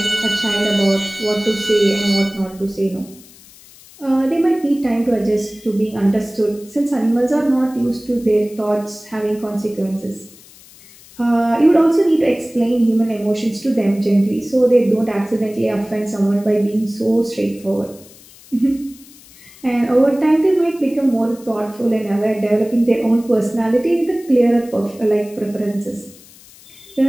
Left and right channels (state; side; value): noise; left; hiss, 23 dB below the sound